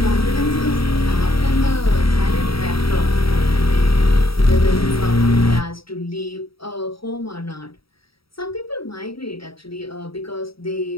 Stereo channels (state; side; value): late; right; 0.75 ms